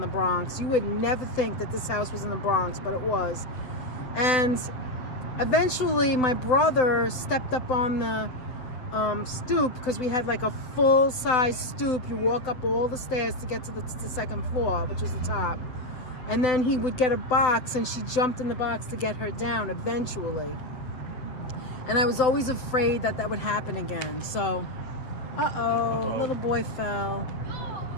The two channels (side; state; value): right; late; 7.9 ms